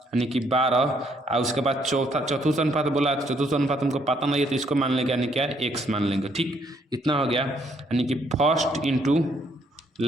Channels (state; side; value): normal; both; correlation 0.69